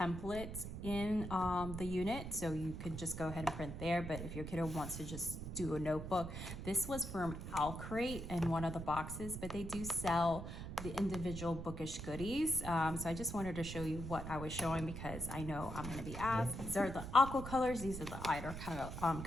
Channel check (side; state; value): right; noise; rumble, 7 dB below the sound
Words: in the unit, so you could just go ahead and print there. But if your kiddo wants to just do a notebook, this was from Crate in one of the boxes, but they do sell the individual bookish goodies. So I just wanted to show you what I was showing because I know I'm going to be asked. These are the aqua colors. These are the outer